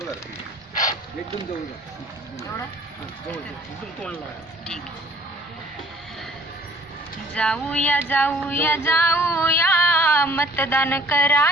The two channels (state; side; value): normal; both; correlation 0.54